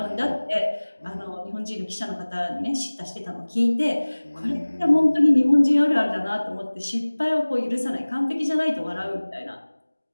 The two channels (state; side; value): inverted; both; correlation -1.00